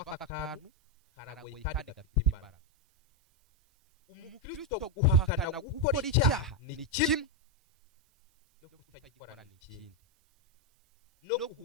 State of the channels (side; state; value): both; normal; correlation 0.04